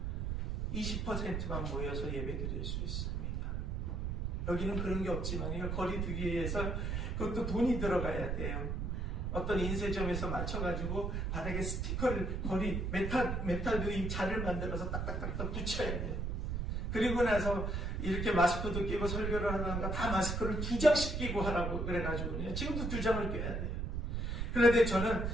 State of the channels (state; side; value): noise; right; rumble, 1 dB below the sound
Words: 20%만 모여서 예배드릴 수 있습니다. 여기는 그런 게 없지만 거리 두기 위해서 그것도 돈이 들어가야 돼요. 어떤 인쇄점에서 맞춰가지고 바닥에 스티커를 거리 메탈도 이 자를 만들어서 딱딱딱딱 붙여야 돼요. 그리고 나서 이렇게 마스크도 끼고 설교를 하다가 다 마스크를 2장씩 끼고 하라고 그래가지고요. 지금도 2장을 껴야 돼요. 그런데 저는